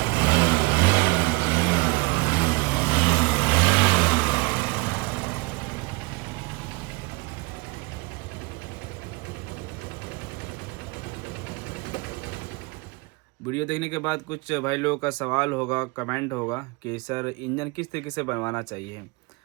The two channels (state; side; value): quieter; left; 26.2 dB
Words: वीडियो देखने के बाद कुछ भाई लोगों का सवाल होगा, कमेंट होगा कि सर इंजन किस तरीके से बनवाना चाहिए।